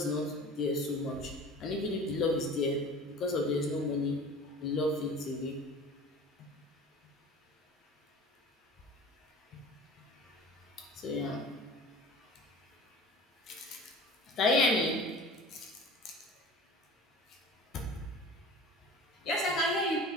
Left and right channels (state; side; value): normal; both; correlation 0.40